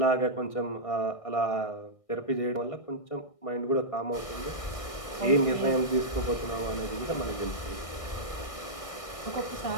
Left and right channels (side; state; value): right; late; 1.6 ms